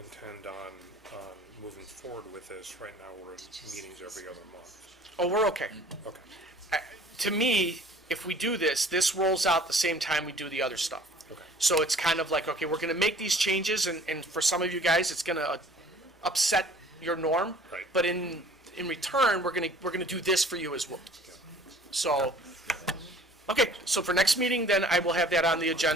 on moving forward with this, right now we're in meetings every other month. Oh, we're okay. Okay. To me, if we do this rolls out the same time we do the other stuff. Okay. So it's kind of like, okay, we're going to make these changes, and for some of you guys, it's going to upset your norm. Right. But in return, we're going to do this for you as well. So, okay, so for next meeting, then I will have that on the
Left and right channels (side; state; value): both; normal; correlation 0.51